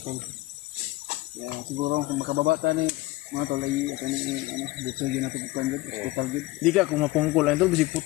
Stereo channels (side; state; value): right; quieter; 18.9 dB